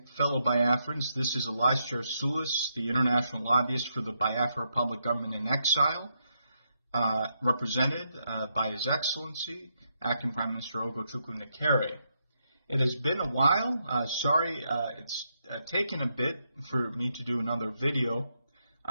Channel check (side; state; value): both; inverted; correlation -0.80